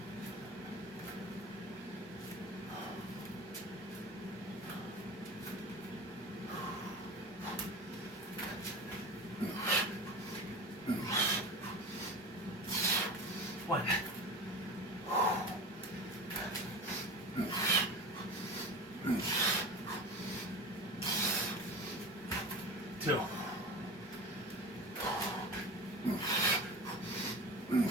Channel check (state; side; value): normal; both; correlation 0.30